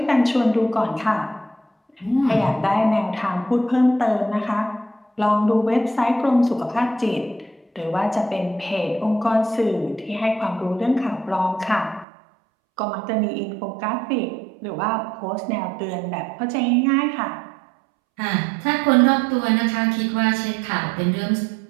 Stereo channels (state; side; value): drops out; left; at 12.1 s